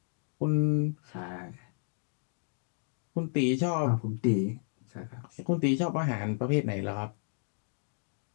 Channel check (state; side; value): silent; right; digital silence